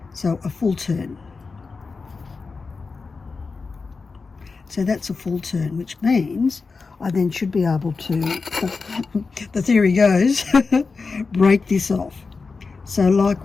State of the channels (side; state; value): right; quieter; 4.4 dB